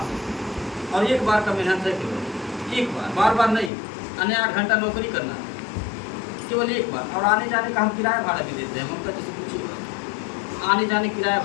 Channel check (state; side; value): drops out; right; at 3.7 s